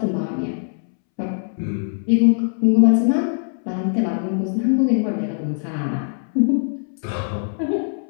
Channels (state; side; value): silent; right; 65 dB below the other